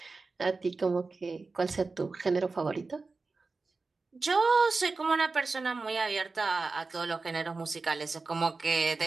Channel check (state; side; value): quieter; left; 3.9 dB